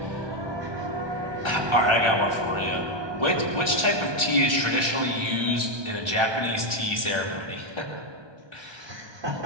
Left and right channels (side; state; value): left; late; 1.2 ms